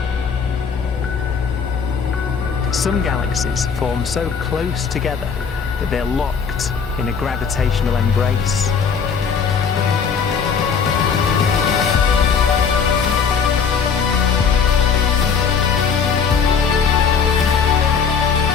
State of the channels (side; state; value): right; quieter; 6.2 dB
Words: Some galaxies form so close together that they're locked in a gravitational embrace.